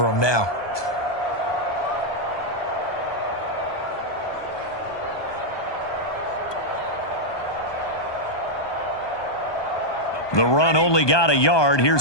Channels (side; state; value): right; late; 1.2 ms